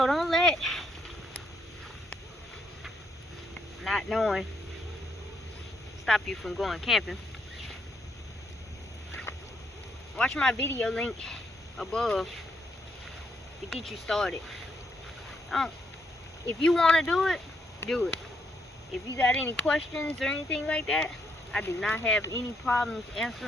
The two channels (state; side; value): normal; both; correlation 0.76